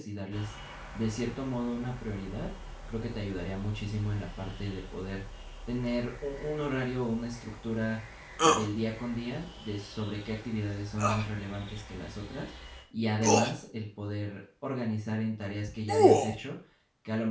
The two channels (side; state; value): both; identical; correlation 1.00